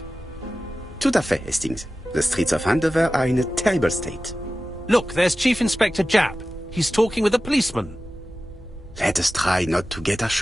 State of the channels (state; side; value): normal; both; correlation 0.95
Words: Tout à fait, Hastings. The streets of Andover are in a terrible state. Look, there's Chief Inspector Japp. He's talking with a policeman. Let us try not to get our